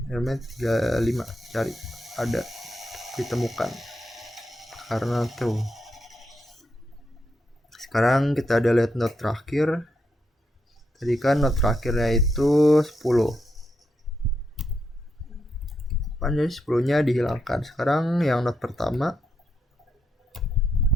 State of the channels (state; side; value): normal; both; correlation 0.82